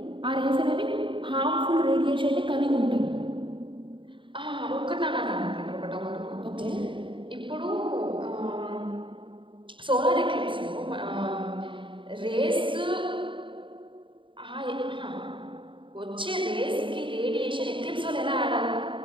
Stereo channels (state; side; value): late; left; 0.24 ms